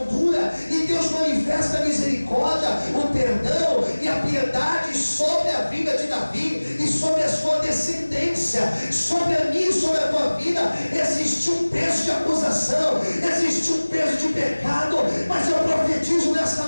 dura e Deus manifesta a misericórdia, o perdão e a piedade sobre a vida de Davi e sobre a sua descendência. Sobre a minha e sobre a tua vida existe um peso de acusação, existe um peso de pecado, mas eu profetizo nessa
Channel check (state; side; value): inverted; both; correlation -1.00